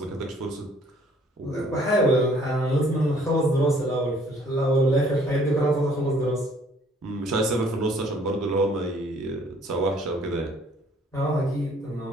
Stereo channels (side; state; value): both; normal; correlation 0.60